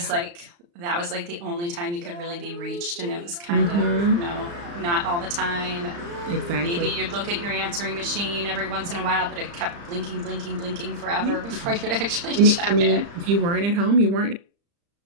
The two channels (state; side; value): late; left; 35 ms